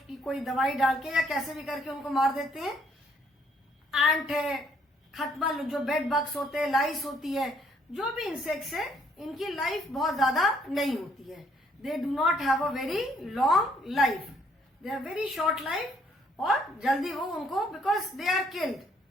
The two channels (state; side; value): normal; both; correlation 0.66